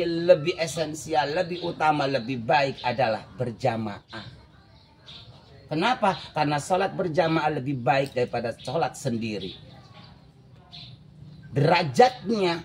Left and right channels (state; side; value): identical; both; correlation 1.00